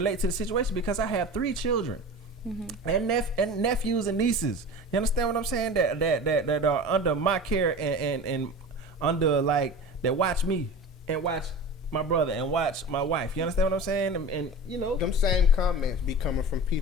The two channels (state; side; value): normal; both; correlation 0.33